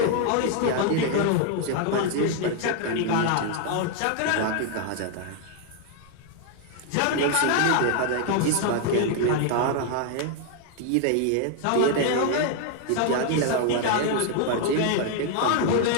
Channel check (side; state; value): both; different; correlation 0.00